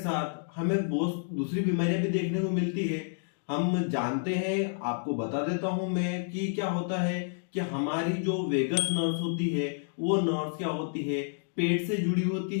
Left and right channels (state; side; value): silent; right; digital silence